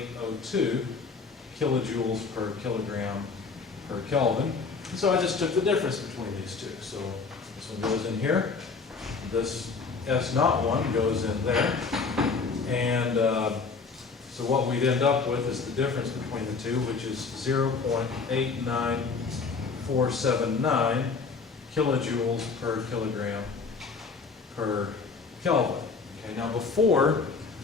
kilojoules per kilogram per Kelvin. And so I just took the difference between these two. So this one goes in here, this S naught one goes in there, and so what we'd end up with is the difference between the two, which is 0.89479 kilojoules per kilogram per Kelvin. Okay, now before,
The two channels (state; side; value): quieter; right; 4.7 dB